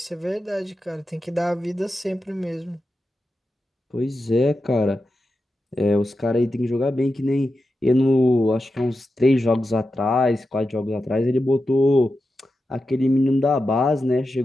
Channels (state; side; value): normal; both; correlation 0.90